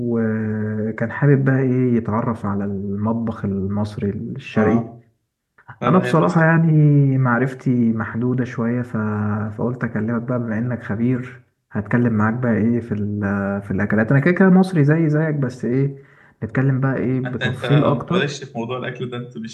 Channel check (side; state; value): both; identical; correlation 1.00